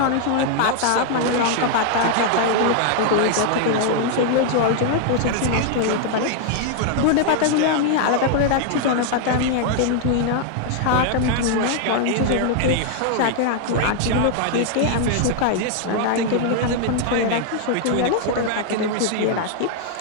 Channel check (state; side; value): different; both; correlation 0.00